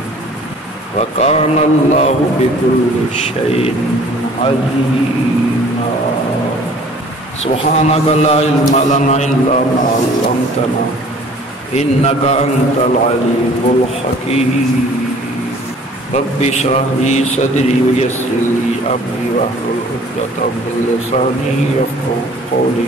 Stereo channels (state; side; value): normal; both; correlation 0.51